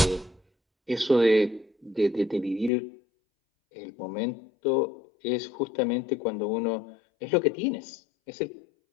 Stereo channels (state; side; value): drops out; right; at 2.7 s